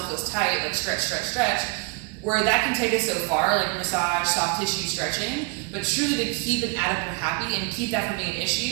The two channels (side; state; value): left; quieter; 31.7 dB